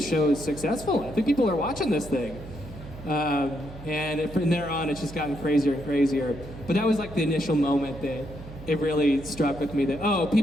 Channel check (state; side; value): noise; right; hum, 14 dB below the sound